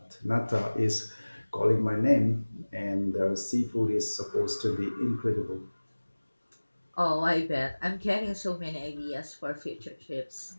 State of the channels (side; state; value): both; inverted; correlation -1.00